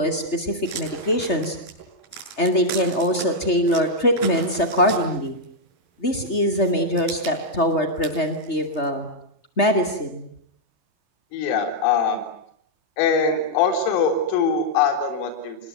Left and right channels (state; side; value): late; right; 3.3 ms